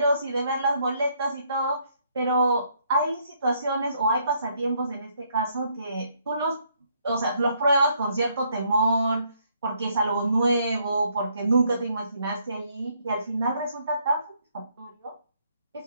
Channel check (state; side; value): inverted; both; correlation -0.70